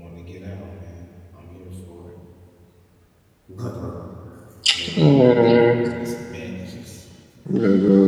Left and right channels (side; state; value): both; identical; correlation 1.00